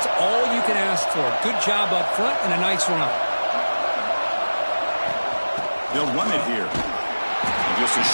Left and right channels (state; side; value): inverted; both; correlation -1.00